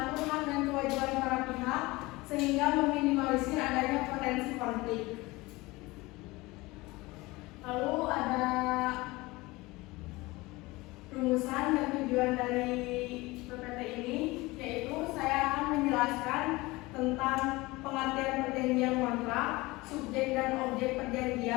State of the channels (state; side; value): quieter; right; 21.6 dB